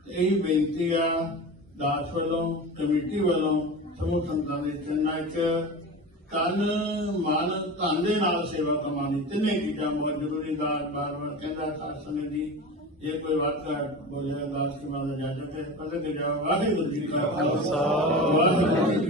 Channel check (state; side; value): normal; both; correlation 0.29